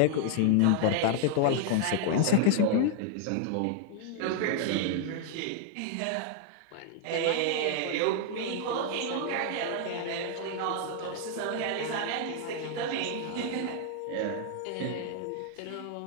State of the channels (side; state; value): both; different; correlation 0.00